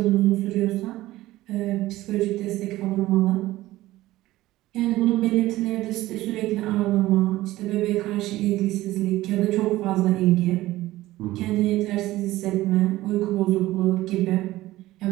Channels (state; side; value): quieter; left; 16.7 dB